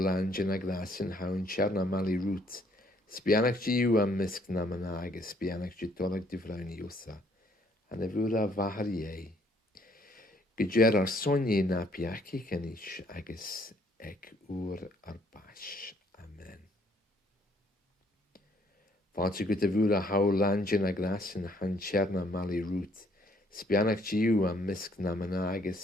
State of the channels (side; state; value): both; normal; correlation 0.65